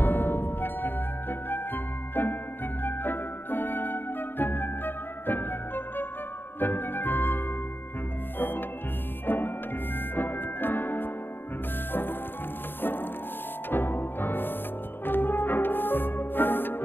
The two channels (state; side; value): late; right; 0.097 ms